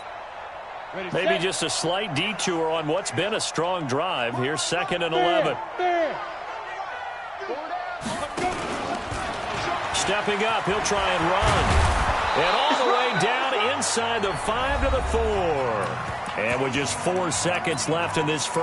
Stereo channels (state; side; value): identical; both; correlation 1.00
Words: Maybe just a slight detour on what's been a strong drive. Here's 2nd and 11. Stepping up, he'll try and run. And all the way down inside the 5 to the 4. And with just 4 seconds left in this